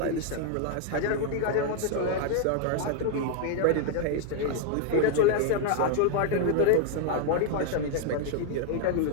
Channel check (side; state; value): both; different; correlation 0.00